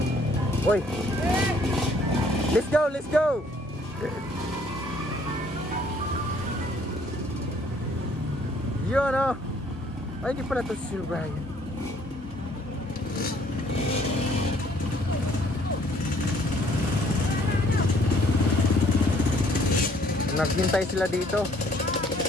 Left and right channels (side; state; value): both; normal; correlation 0.62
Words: Oy. Let's go, let's go. Yun oh. Ay, hindi pala ito si Sir Brian. Naghintay sila dito.